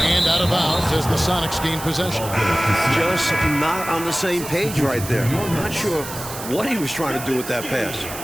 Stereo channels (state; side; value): noise; right; hiss, 10 dB below the sound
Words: out of bounds as the Sonics gain possession. Just not on the same page right there. Not sure what he was trying to do with that pass.